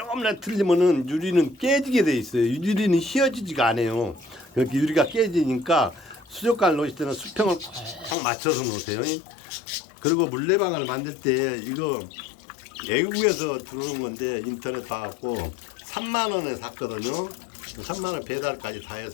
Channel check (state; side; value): drops out; right; at 8.2 s